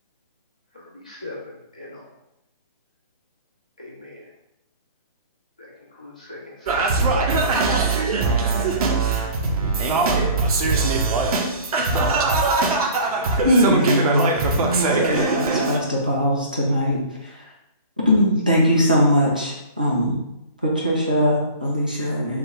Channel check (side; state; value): both; inverted; correlation -0.42